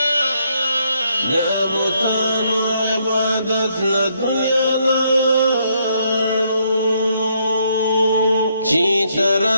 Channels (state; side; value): inverted; both; correlation -0.73